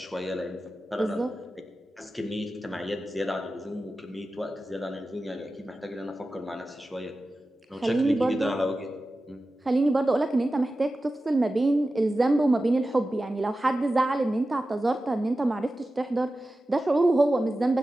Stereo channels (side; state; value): both; normal; correlation 0.94